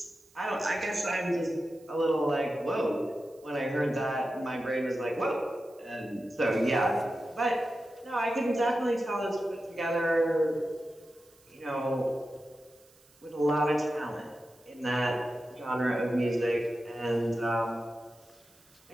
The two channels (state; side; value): noise; right; hiss, 29 dB below the sound